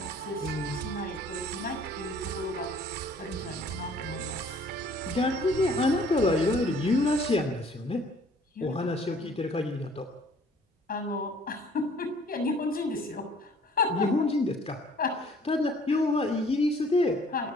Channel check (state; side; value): normal; both; correlation 0.56